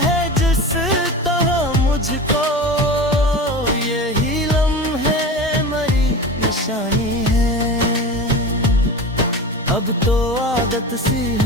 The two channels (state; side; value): normal; both; correlation 0.30